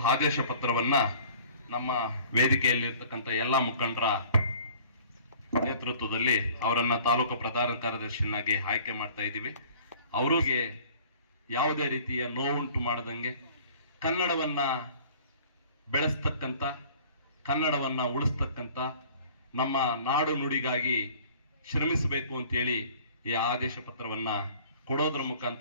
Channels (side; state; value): both; inverted; correlation -0.51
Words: ಆದೇಶ ಪತ್ರವನ್ನ ನಮ್ಮ ವೇದಿಕೆಯಲ್ಲಿರ್ತಕ್ಕಂಥ ಎಲ್ಲ ಮುಖಂಡರ ನೇತೃತ್ವದಲ್ಲಿ ಅವರನ್ನ ತಾಲೂಕು ಪ್ರಧಾನ ಕಾರ್ಯದರ್ಶಿಯನ್ನಾಗಿ ಆಯ್ಕೆ ಮಾಡ್ತಾ ಇದ್ದೀವಿ. ಅವರಿಗೆ ಯಾವುದೇ ರೀತಿಯ ನೋವುಂಟು ಮಾಡದಂಗೆ ಕನ್ನಡವನ್ನ ಬೆಳೆಸ್ತಕ್ಕಂಥ, ಕನ್ನಡವನ್ನ ಉಳಿಸ್ತಕ್ಕಂಥ, ನಮ್ಮ ನಾಡು ನುಡಿಗಾಗಿ ಶ್ರಮಿಸಬೇಕು ಅಂತೇಳಿ ಈ ಆದೇಶ ಪತ್ರವನ್ನ ಕೊಡೋದ್ರ